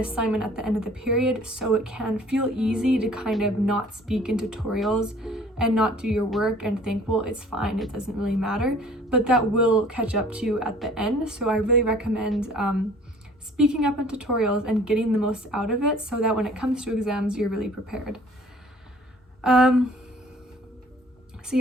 at the end of the period, so it can feel easy to kind of not speak in tutorials and not do your work and think, well, it's fine, it doesn't really matter, but that will catch up to you at the end. So I really recommend speaking up in tutorials and getting the most out of it, so that when it comes to exams, you're really prepared. So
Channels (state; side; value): normal; both; correlation 0.52